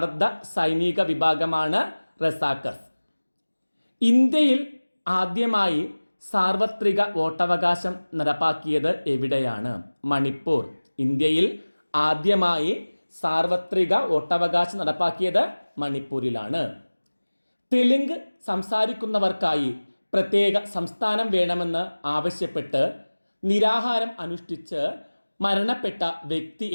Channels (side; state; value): both; inverted; correlation -1.00